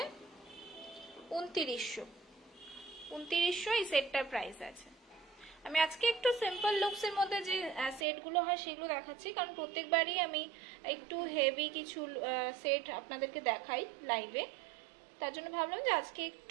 2900। 2900 এই সেটটার প্রাইস আছে। আমি আজকে একটু সিম্পল লুকস এর মধ্যে যে সেটগুলো হয় সেগুলো দেখাচ্ছি, কারণ প্রত্যেকবারই আমি একটু হেভি কিছু সেট আপনাদেরকে দেখাই লাইভে। তার জন্য ভাবলাম যে আজকে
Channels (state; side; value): drops out; left; at 8.1 s